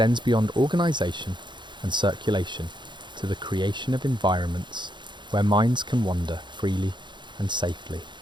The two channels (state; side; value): late; left; 0.22 ms